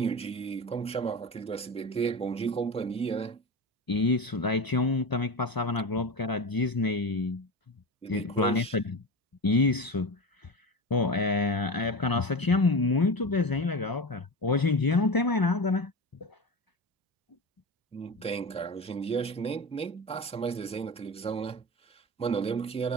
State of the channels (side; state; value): both; normal; correlation 0.25